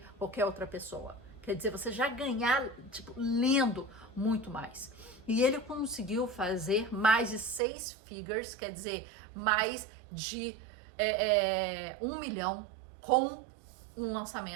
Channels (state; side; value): drops out; left; at 7.6 s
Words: qualquer outra pessoa. Quer dizer, você já ganhar, lendo muito mais. E ele conseguiu fazer mais de 6 figures, quer dizer, mais de 1 milhão com um